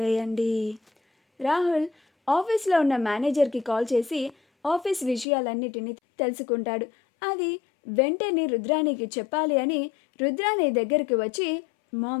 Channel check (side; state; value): right; drops out; at 5.2 s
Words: రాహుల్ ఆఫీస్లో ఉన్న మేనేజర్కి కాల్ చేసి ఆఫీస్ విషయాలన్నిటినీ తెలుసుకుంటాడు. అది వెంటనే రుద్రానికి చెప్పాలి అని రుద్రాని దగ్గరికి వచ్చి,